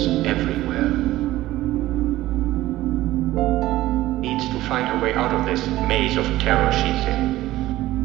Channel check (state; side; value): quieter; left; 16.1 dB